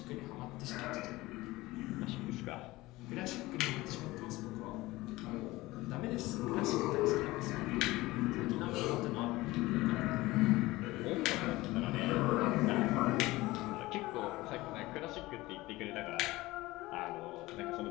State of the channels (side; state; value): right; quieter; 19.4 dB